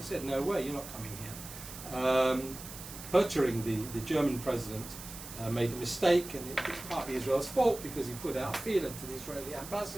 said, no way, you're not coming here. Pöttering, the German president, made a mistake, and it's partly Israel's fault because he put out a feeler to the Israeli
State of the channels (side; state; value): right; noise; hiss, 12 dB below the sound